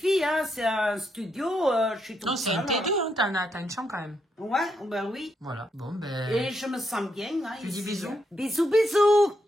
hein. C'est un studio. Je suis toute Non, c'est un seule. T2, hein, t'as une chambre quand même. Ouais, ben oui. Voilà, bon, ben... Et je me sens bien. Hein, Tu dis ici. bisous? Bisous, bisous.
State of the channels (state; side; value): normal; both; correlation 0.79